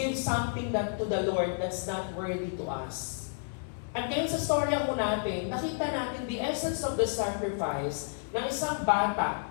something that to the Lord that's not worthy to us. At ngayon sa storya ko natin, nakita natin the essence of the sacrifice ng isang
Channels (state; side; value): silent; right; 56 dB below the other